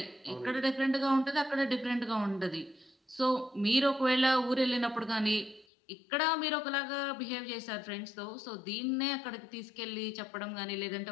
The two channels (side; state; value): right; drops out; at 5.7 s